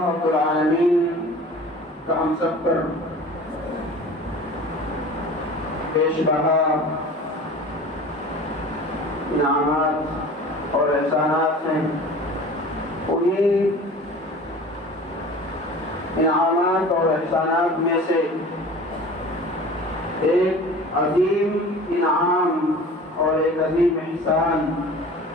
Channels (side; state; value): both; normal; correlation 0.41